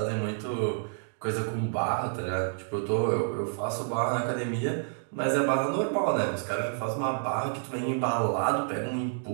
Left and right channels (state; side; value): silent; left; digital silence